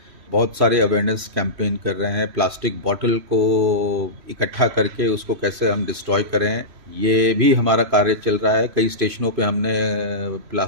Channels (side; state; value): left; late; 3.1 ms